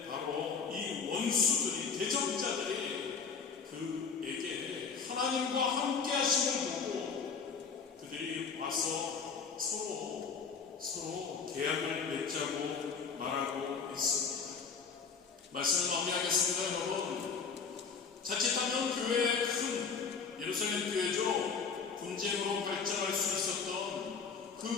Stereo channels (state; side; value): quieter; right; 5.7 dB